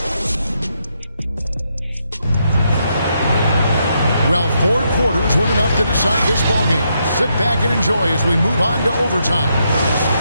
Well, 4 quarters weren't enough to decide this ballgame. Sit back and enjoy as we move on to overtime.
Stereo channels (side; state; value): both; inverted; correlation -0.79